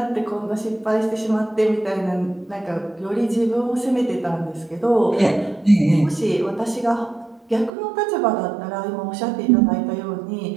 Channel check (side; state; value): left; drops out; at 7.7 s